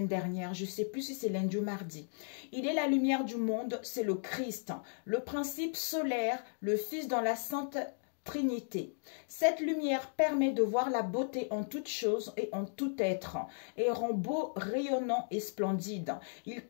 dernière. Je ne sais plus si c'est lundi ou mardi. Il est la lumière du monde, c'est le Christ. Le principe solaire, le Fils dans la Sainte Trinité. Cette lumière permet de voir la beauté en toute chose et en tout être et rend beau, rayonnant et splendide. Il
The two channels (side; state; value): right; silent; digital silence